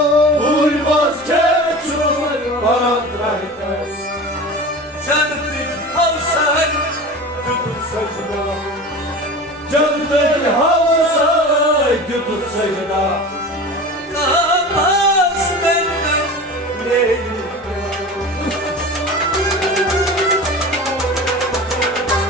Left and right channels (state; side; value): normal; both; correlation 0.34